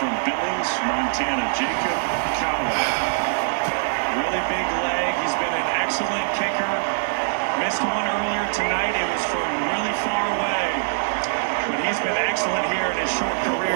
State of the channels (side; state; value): left; silent; digital silence